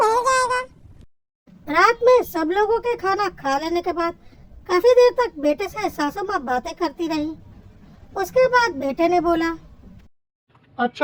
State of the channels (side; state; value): both; identical; correlation 1.00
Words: जाएगा। रात में सब लोगों के खाना खा लेने के बाद काफी देर तक बेटे से सासू माँ बातें करती रही। उसके बाद बेटे ने बोला,